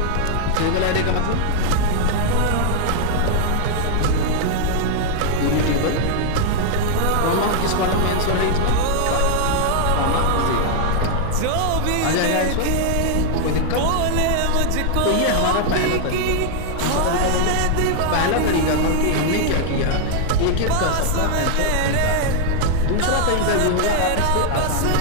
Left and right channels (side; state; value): both; different; correlation 0.00